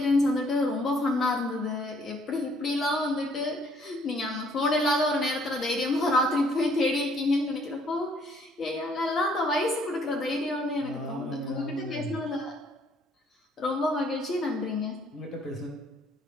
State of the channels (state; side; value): normal; both; correlation 0.64